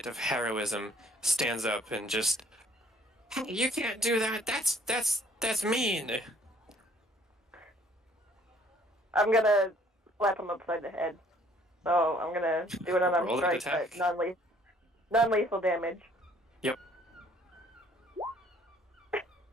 of heroism, stands up and just, "Hey, you can't do that. That's mean." I'm gonna slap him upside the head. So I'm gonna do an unarmed Roll an strike, but attack. non-lethal damage. Yep.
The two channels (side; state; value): both; normal; correlation 0.60